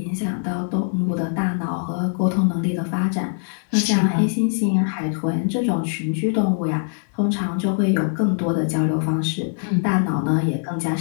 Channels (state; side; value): silent; right; digital silence